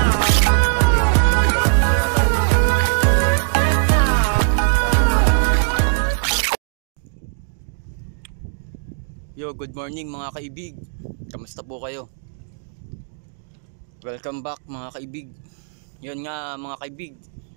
Yo, good morning mga kaibig. Kamusta po kayo? Welcome back mga kaibig. Yun nga mga kaibig,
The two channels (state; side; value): silent; left; digital silence